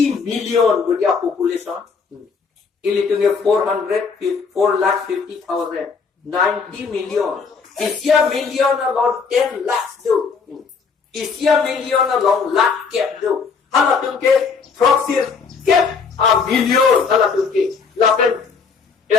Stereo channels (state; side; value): quieter; right; 5.3 dB